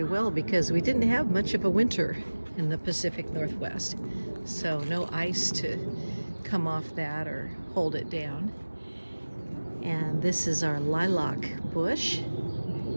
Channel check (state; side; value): inverted; both; correlation -1.00